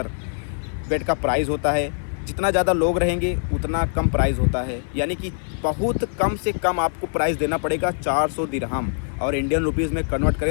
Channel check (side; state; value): right; silent; 63 dB below the other